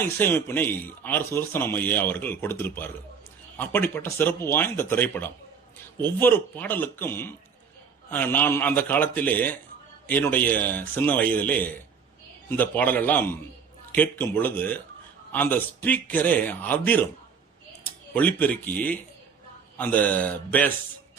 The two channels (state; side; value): quieter; left; 6.2 dB